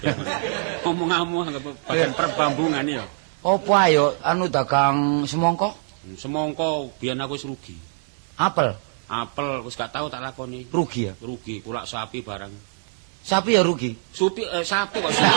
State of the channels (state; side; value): silent; left; digital silence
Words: Omonganmu anggap bagian perbambungan ya. Apa ayo anu dagang semongko? Semongko biyen aku wis rugi. Apel, Apel wis gak tau tak lakoni. rugi ya. Rugi kulak sapi barang. Sapi ya rugi. Sapi kok